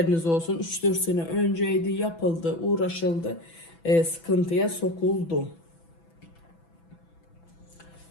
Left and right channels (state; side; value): late; right; 6.0 ms